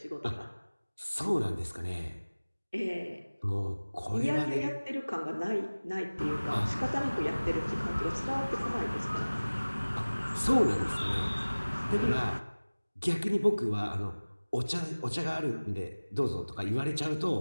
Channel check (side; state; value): both; inverted; correlation -1.00